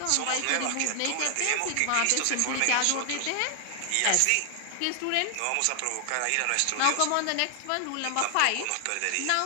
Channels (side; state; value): both; different; correlation 0.00